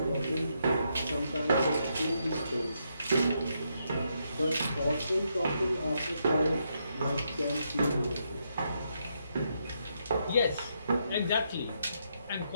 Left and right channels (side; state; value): both; inverted; correlation -0.79